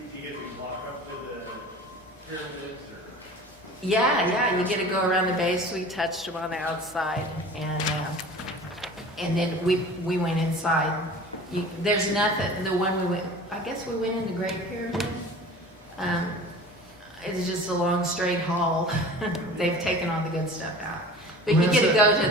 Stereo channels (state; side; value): normal; both; correlation 0.40